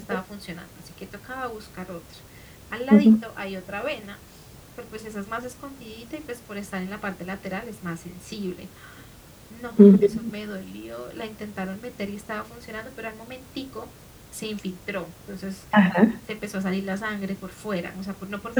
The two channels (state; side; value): identical; both; correlation 1.00